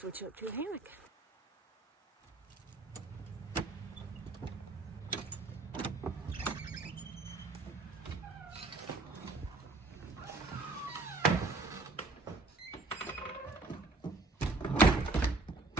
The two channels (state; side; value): quieter; left; 3.3 dB